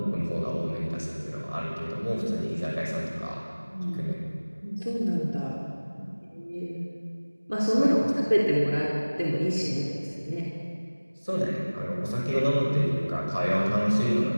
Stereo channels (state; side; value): inverted; both; correlation -1.00